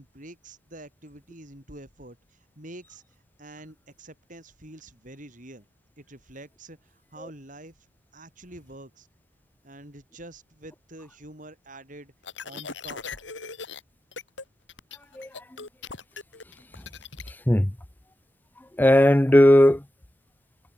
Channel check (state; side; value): normal; both; correlation 0.92